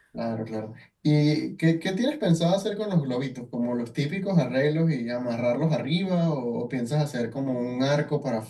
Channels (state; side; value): identical; both; correlation 1.00